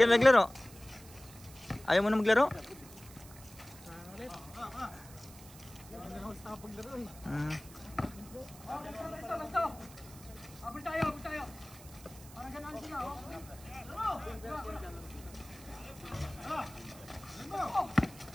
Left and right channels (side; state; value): right; noise; hiss, 19 dB below the sound